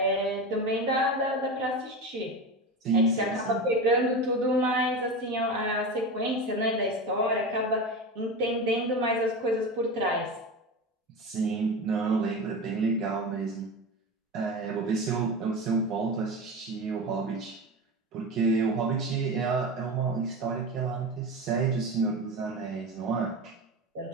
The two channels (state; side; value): normal; both; correlation 0.24